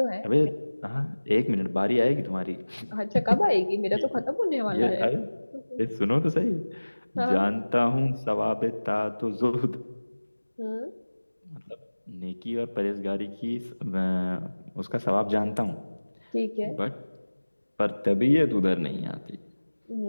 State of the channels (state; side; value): inverted; both; correlation -1.00